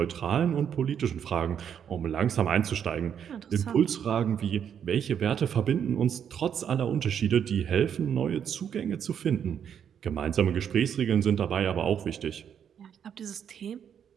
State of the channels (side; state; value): left; quieter; 8.4 dB